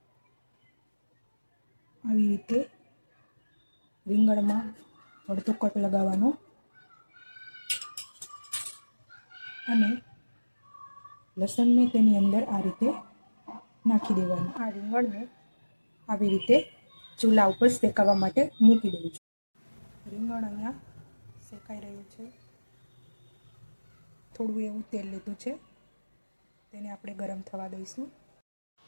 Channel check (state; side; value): inverted; both; correlation -1.00